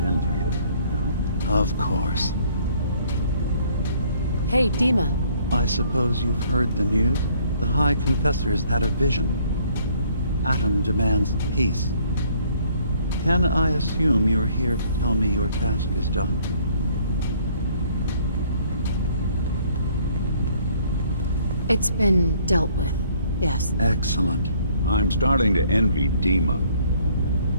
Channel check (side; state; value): both; inverted; correlation -0.62